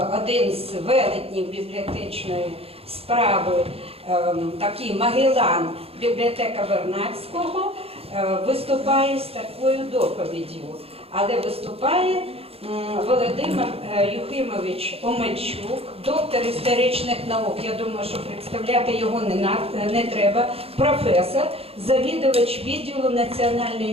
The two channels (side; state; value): left; late; 0.28 ms